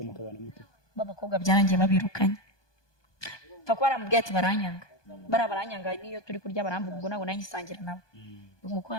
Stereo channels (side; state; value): right; late; 1.2 ms